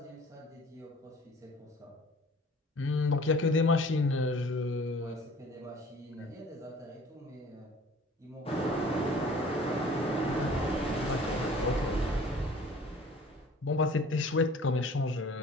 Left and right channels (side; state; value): both; normal; correlation 0.49